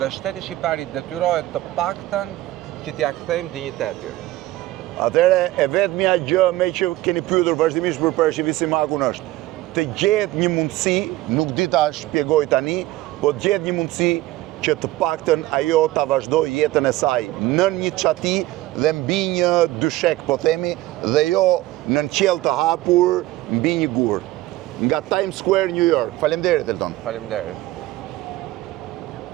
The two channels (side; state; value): left; quieter; 17.1 dB